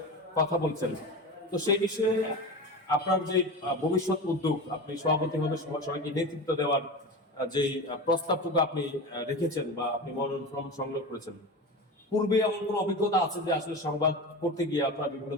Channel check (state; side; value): normal; both; correlation 0.27